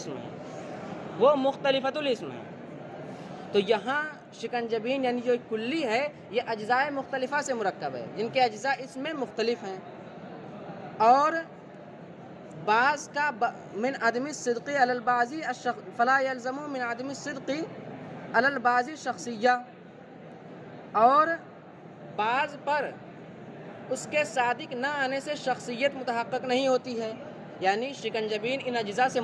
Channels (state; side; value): identical; both; correlation 1.00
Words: ہیں، تو یہاں شکنجبین یعنی جو کلی ہے یہ اجزاء مختلفہ سے مرکب ہے جن کے اجزاء اس میں مختلف ہیں، اور بعض کا من عدم الصدق علی البعض فلا يلزم من عدم الصدق علی البعض شخصیہ، اور بعض پر اس کے صادق نہ آنے سے شخصیت متحقق نہیں ہوتی ہے، یعنی شکنجبین ان اجزاء سے